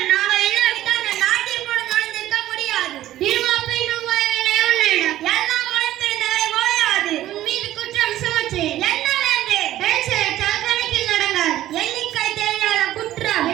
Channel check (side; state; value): left; quieter; 13.9 dB